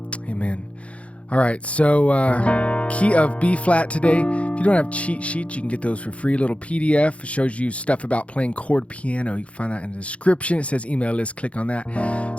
All right, so key of B flat today. If you don't have cheat sheets, you can get those for free. Little PDF. It shows you stuff about playing chord piano. You can find that in the description. It says email list. Click on that.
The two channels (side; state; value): right; late; 0.063 ms